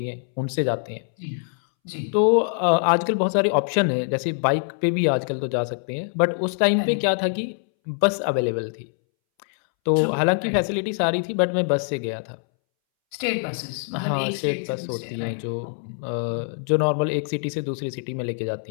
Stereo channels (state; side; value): silent; right; 63 dB below the other